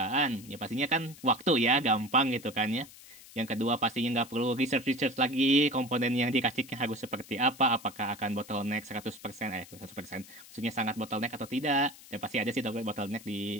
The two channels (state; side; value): noise; left; hiss, 19 dB below the sound